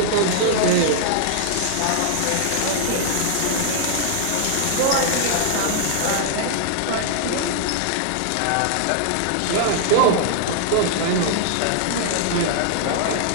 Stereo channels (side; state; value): both; different; correlation 0.00